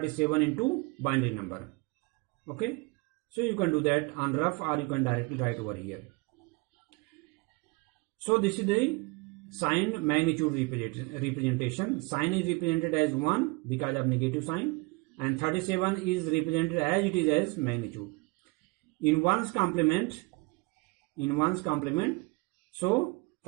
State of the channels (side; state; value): left; quieter; 27.1 dB